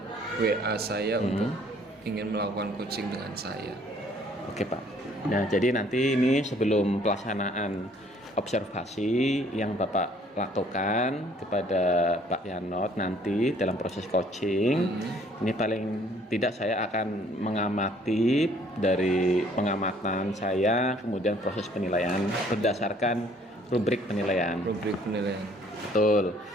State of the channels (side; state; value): both; normal; correlation 0.60